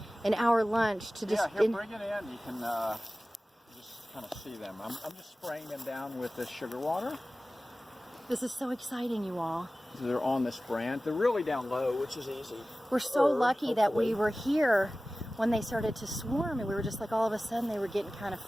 an hour lunch to just... Yeah, here, bring it in. You can just kind of see them. I'm just spraying them down with the sugar water. This is so exciting, you all. They're on this branch. They're really down low, which is easy. We're so lucky that we were here when they started to swarm, and we were just like, all of a sudden they were getting kind of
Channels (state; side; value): normal; both; correlation 0.97